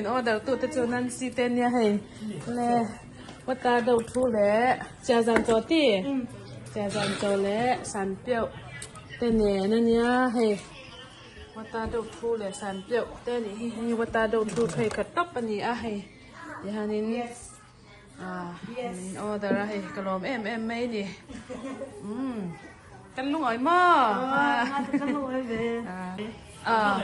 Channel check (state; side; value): identical; both; correlation 1.00